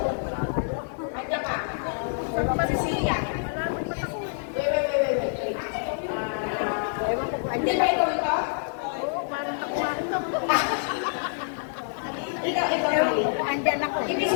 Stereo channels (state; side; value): silent; right; 60 dB below the other